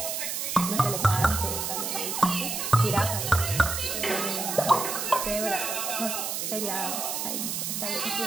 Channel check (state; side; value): noise; right; hiss, 2 dB below the sound